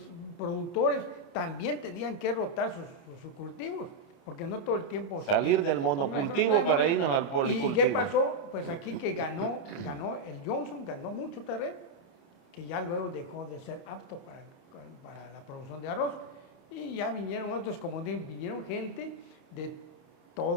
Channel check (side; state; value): right; late; 29 ms